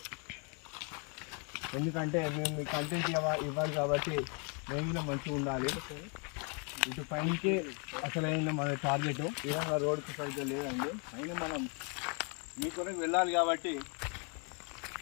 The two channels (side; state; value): right; quieter; 36.1 dB